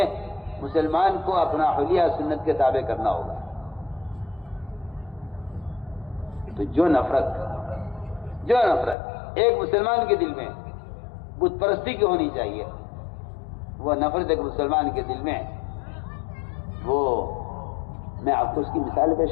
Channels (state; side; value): drops out; right; at 9.0 s